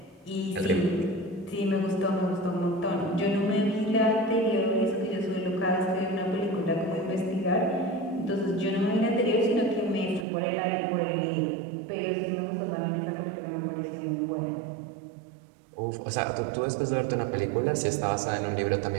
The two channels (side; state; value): left; drops out; at 10.2 s